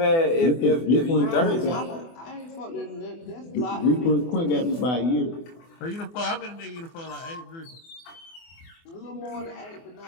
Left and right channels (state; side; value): late; right; 24 ms